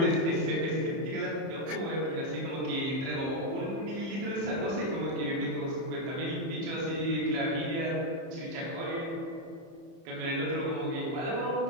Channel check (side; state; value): left; late; 30 ms